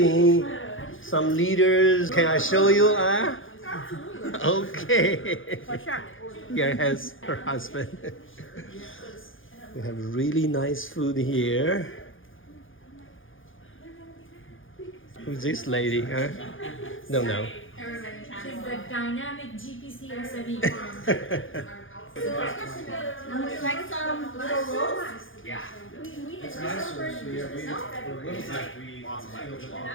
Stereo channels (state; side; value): late; right; 0.58 ms